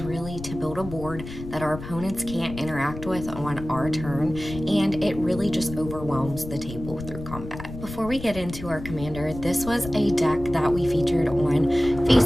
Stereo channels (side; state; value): left; noise; rumble, 11 dB below the sound